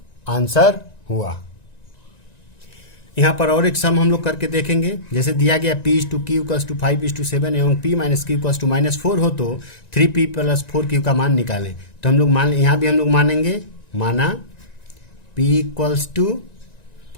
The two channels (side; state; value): right; late; 1.9 ms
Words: आंसर हुआ। यहाँ पर और एक सम हम लोग करके देखेंगे। जैसे दिया गया p is to q equals to 5:7 एवं p minus q equals to -4 हो तो 3p प्लस 4q का मान निकालें। तो हम लोग मान, यहाँ भी हम लोग मानेंगे, माना p इक्वल्स टू